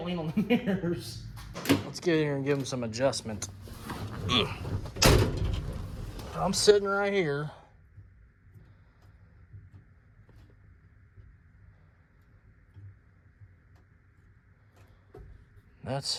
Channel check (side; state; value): both; identical; correlation 1.00